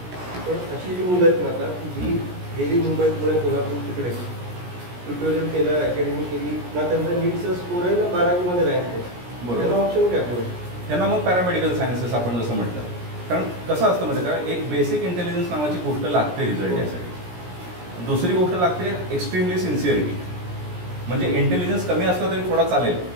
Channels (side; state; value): left; late; 17 ms